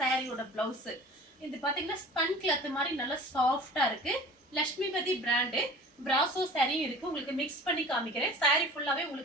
சாரியோட பிளவுஸ். இது பாத்தீங்கன்னா ஸ்பன் கிளாத் மாதிரி நல்லா சாஃப்ட்டா இருக்கு. லட்சுமிபதி பிராண்ட் பிராசோ saree இருக்கு. உங்களுக்கு மிக்ஸ் பண்ணி காமிக்கிறேன். saree ஃபுல்லாவே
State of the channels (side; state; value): both; normal; correlation 0.42